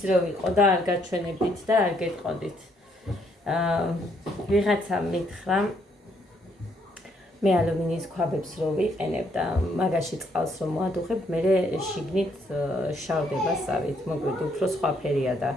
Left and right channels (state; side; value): normal; both; correlation 0.71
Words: რო ვიყო და არ გაჩვენებდით და არ გეტყოდით. ვიღაცა მითხრა მე ალუმინის ქვაბებს რო ვიყენებ და მაგაში წყალს რო მოადუხებ, მე შიგნით შავდება სავით, მოგვიდ უფრო სხვა ფერია და